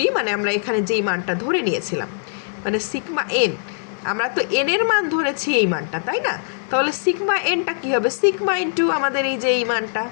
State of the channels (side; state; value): right; silent; 65 dB below the other